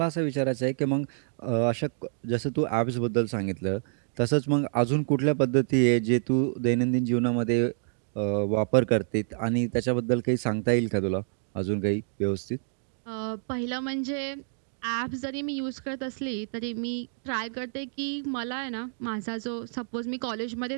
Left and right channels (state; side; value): silent; left; digital silence